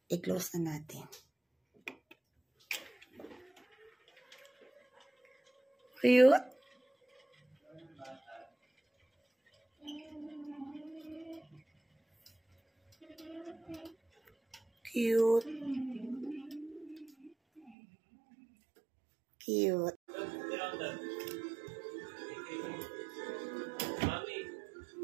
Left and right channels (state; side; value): drops out; left; at 17.8 s